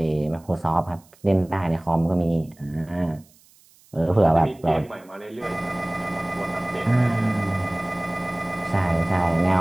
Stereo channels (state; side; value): noise; right; hiss, 29 dB below the sound